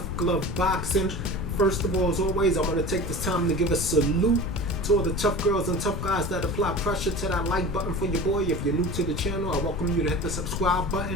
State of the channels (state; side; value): noise; left; rumble, 4 dB below the sound